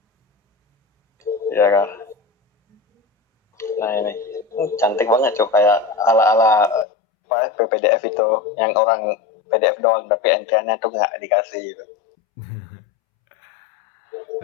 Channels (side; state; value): right; drops out; at 6.9 s